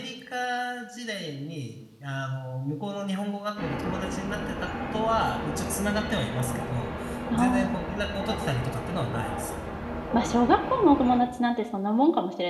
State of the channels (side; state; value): both; identical; correlation 1.00